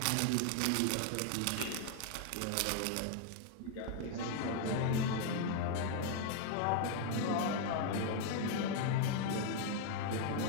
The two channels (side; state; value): both; different; correlation 0.00